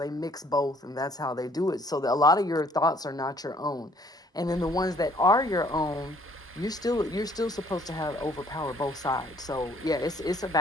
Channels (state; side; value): normal; both; correlation 0.62